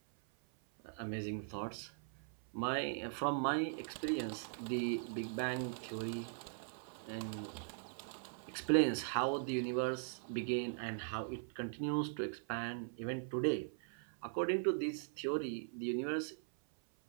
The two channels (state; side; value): silent; left; 51 dB below the other